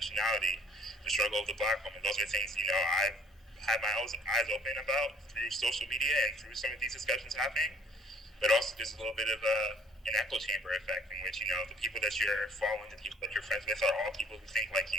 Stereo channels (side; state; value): both; normal; correlation 0.56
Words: the struggle of the Black woman. Those are things I've had my eyes open about through social media and through some of these discussions happening. But also there's a little bit of an echo chamber effect, in which the people that you're following, the people that you're friends with, are all people who think like